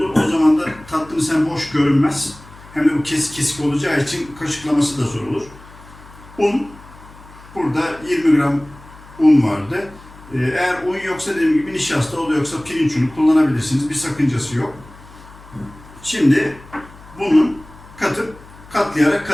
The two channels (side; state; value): left; noise; hum, 21 dB below the sound